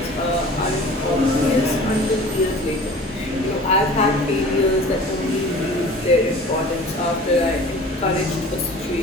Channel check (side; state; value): both; normal; correlation 0.43